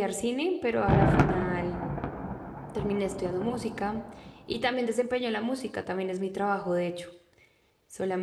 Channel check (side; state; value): both; identical; correlation 1.00